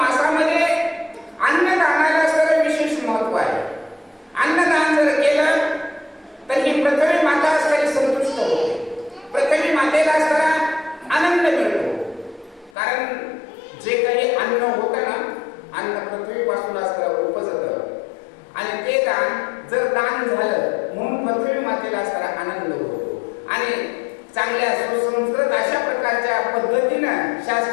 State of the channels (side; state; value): right; drops out; at 12.8 s